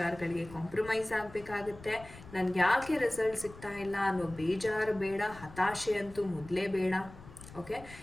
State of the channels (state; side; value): noise; left; rumble, 18 dB below the sound